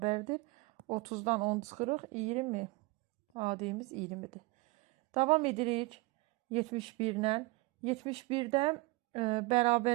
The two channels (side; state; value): left; quieter; 23.5 dB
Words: 30'dan 10 çıxırıq. 20. AD'miz 20'dir. Davam edirik 71'lə. 71'dən